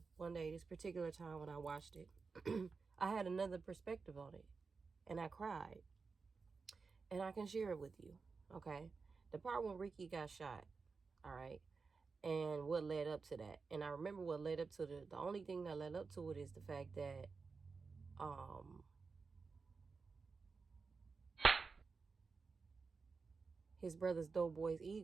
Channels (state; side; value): quieter; left; 4.7 dB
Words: one day, this particular time when I watched it, I had another perspective on it, and I cried, and I can share it with you, okay? The part when Ricky got shot, all right, and what led up to that. And I remember what led up to the only thing that led up to it is the fact that, his brother's doughboy's